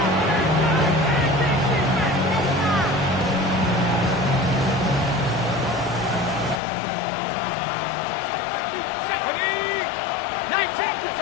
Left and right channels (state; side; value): drops out; right; at 6.6 s